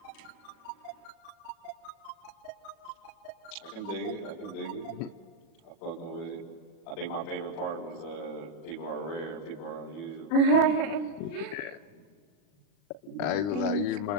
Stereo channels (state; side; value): late; right; 40 ms